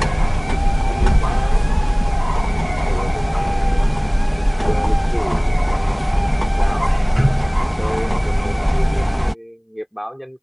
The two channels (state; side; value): identical; both; correlation 1.00